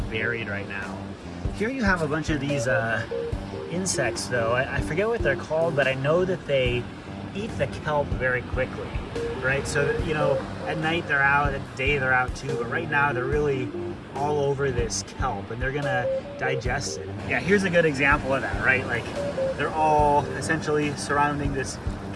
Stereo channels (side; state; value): both; identical; correlation 1.00